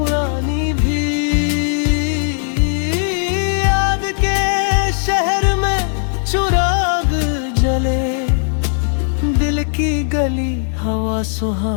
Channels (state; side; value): silent; right; digital silence